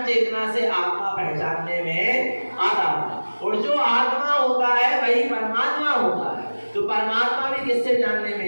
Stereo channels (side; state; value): both; inverted; correlation -1.00